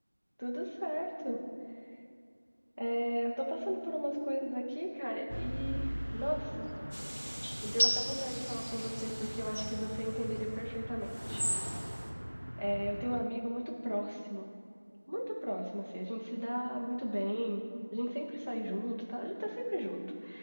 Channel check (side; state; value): both; inverted; correlation -1.00